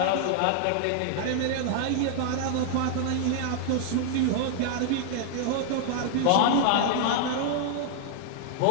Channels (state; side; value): different; both; correlation -0.01